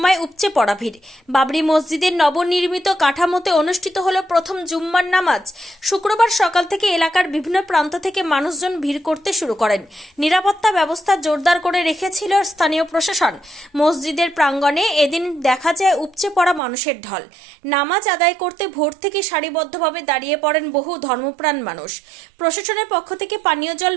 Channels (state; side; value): drops out; left; at 16.6 s